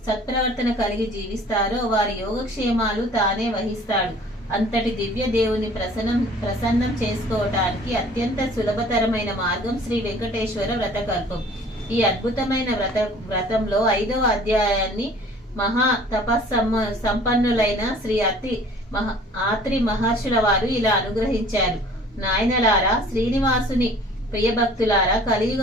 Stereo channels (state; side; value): normal; both; correlation 0.50